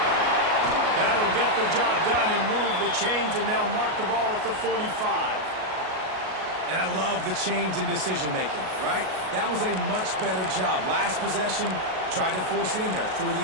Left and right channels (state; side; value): late; left; 38 ms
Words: That'll get the job done and move the chains, and they'll mark the ball at the 45. And I love the change in decision-making, right? That was a much better job. Last possession, tried to force it in there through the